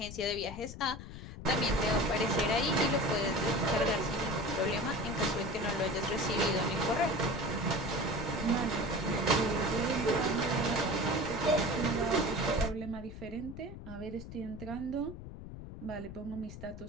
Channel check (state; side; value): noise; left; rumble, 11 dB below the sound